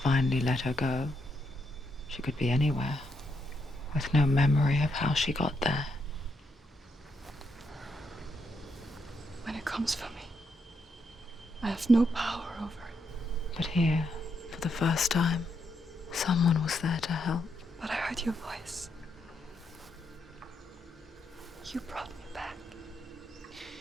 let her go, she could be anywhere, with no memory of how she got there. When it comes for me, I have no power over it. But here, for the first time, someone was there to help. But I heard your voice. You brought me back.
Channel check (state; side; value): normal; both; correlation 0.79